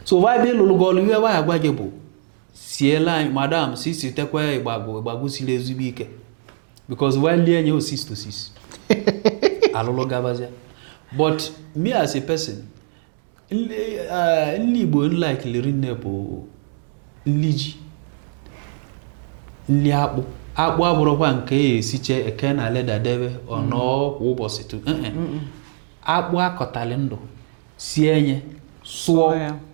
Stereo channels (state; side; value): silent; left; digital silence